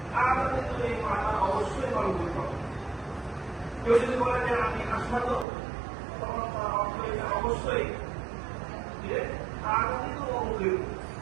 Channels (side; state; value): left; drops out; at 5.5 s